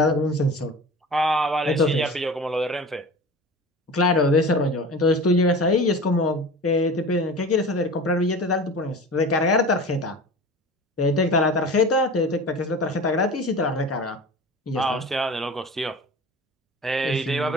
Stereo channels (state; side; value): normal; both; correlation 0.36